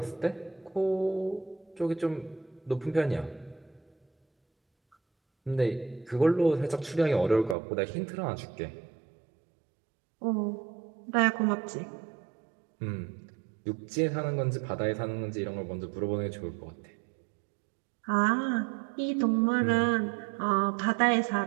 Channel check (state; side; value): drops out; left; at 7.6 s